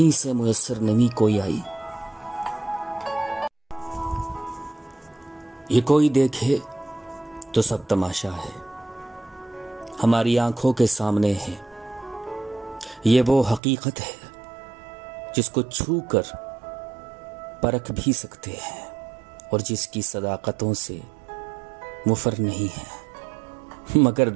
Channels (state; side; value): drops out; left; at 13.6 s